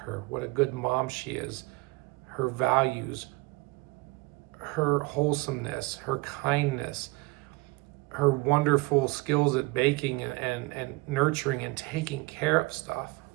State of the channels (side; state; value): left; quieter; 23.0 dB